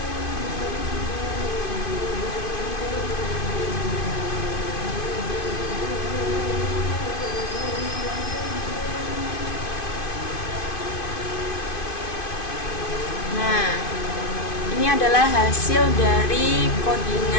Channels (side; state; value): right; late; 2.5 ms